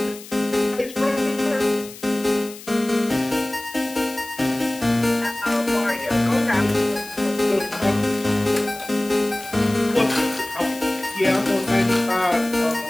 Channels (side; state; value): left; noise; hiss, 16 dB below the sound